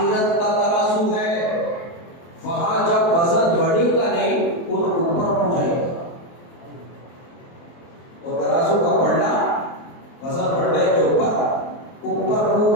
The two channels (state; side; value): late; right; 23 ms